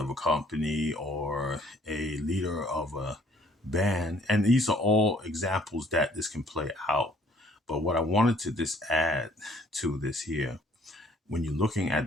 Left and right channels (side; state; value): both; normal; correlation 0.59